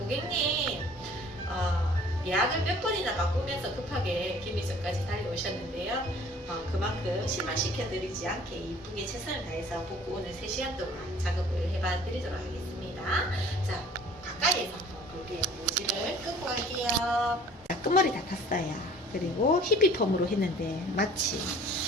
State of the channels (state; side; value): normal; both; correlation 0.51